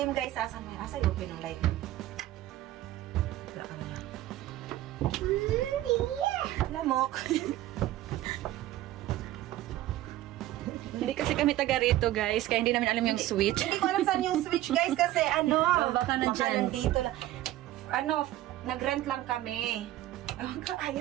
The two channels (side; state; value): left; quieter; 14.8 dB